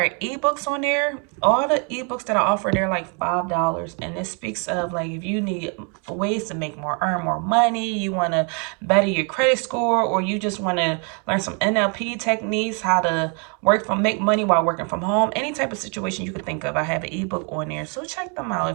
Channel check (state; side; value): quieter; left; 37.0 dB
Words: ebooks on there. All the ebooks that I offer, they're like $5. And it speaks of, like, if you need ways to make more, earn more money, you want to better your credit score, or you just want to learn some NLP techniques, how to make money while working from home, any type of situation you could think of, I have an ebook on there. So check them out